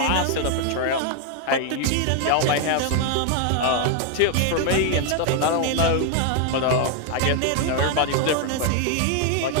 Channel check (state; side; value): different; both; correlation 0.01